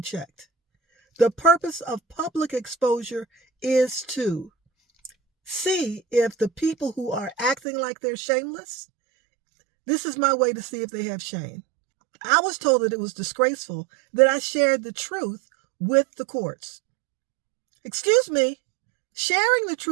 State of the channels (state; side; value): drops out; left; at 7.6 s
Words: checked. The purpose of public exposure is to see if the people who are acting like they're shameless, this is my way to see if they have shame. I was told that it was disgraceful that I shared the truth with the courts. Excuse me, sharing the